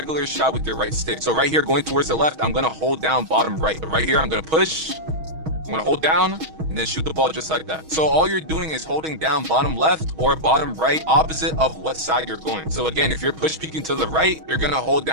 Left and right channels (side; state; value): left; late; 6.3 ms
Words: shot with your right stick. So right here going towards the left, I'm gonna hold down bottom right. But right here I'm gonna push, I'm gonna hold down, and then shoot the ball just like that. So all you're doing is holding down bottom left or bottom right opposite of what side you're going. So again, if you're push peeking to the right, you're gonna hold